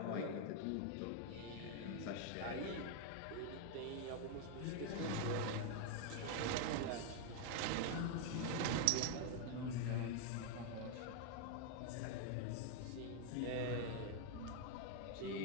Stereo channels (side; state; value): both; different; correlation 0.00